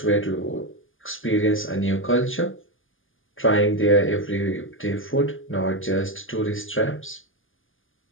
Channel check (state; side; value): late; right; 0.58 ms